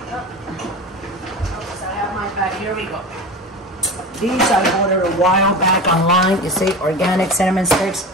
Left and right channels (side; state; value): both; normal; correlation 0.30